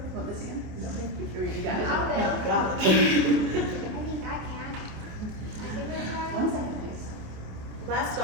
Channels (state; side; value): late; left; 27 ms